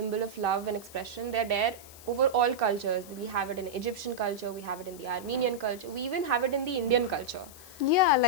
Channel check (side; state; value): left; noise; hiss, 18 dB below the sound